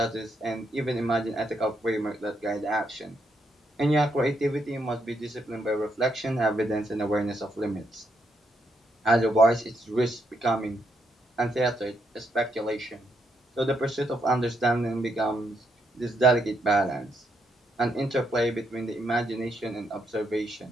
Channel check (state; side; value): normal; both; correlation 0.77